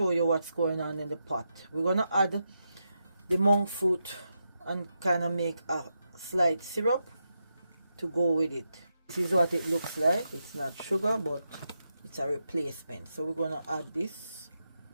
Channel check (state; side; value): inverted; both; correlation -0.86